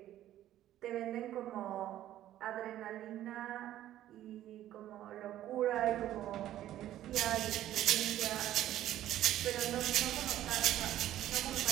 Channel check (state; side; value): quieter; left; 12.9 dB